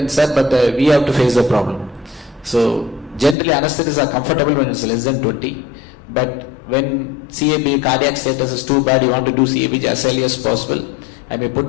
sir, but we have to face the problem. So generally anesthetists are comfortable when it's less than 20, but when CAB cardiac status is too bad, you want to do CABG as early as possible, I may put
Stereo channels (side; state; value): right; drops out; at 3.4 s